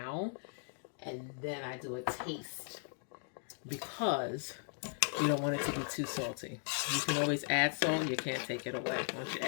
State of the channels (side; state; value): right; silent; 53 dB below the other